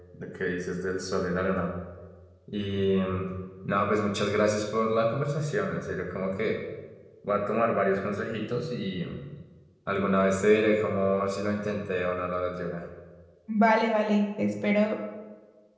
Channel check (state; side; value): identical; both; correlation 1.00